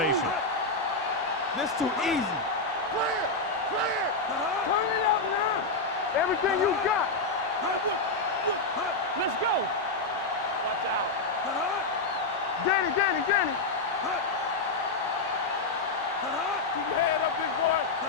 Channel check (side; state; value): right; quieter; 3.4 dB